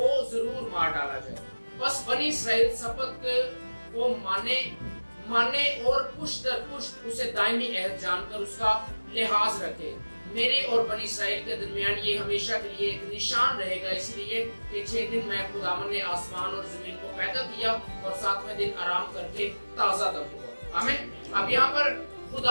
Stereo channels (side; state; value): both; inverted; correlation -1.00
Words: जरूर मार डाला जाए। बस बनी इस्राएल सब्बत को माने और पुष्ट दर पुष्ट उसे दायमी अहद जानकर उसका लिहाज रखे। मेरे और बनी इस्राएल के दरमियान ये हमेशा के लिए एक निशान रहेगा, इसलिए कि 6 दिन मैं खुदावन ने आसमान और जमीन को पैदा किया और 7वें दिन आराम करके ताजा दम हुआ। आमीन। अब यहाँ पर